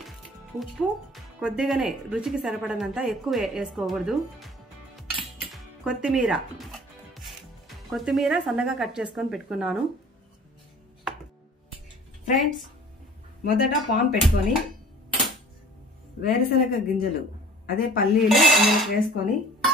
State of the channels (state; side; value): normal; both; correlation 0.47